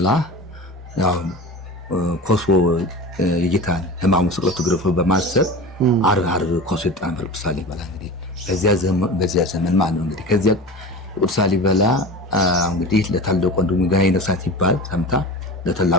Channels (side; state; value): both; normal; correlation 0.31